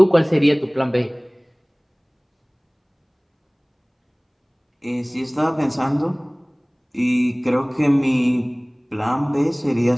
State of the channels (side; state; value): both; identical; correlation 1.00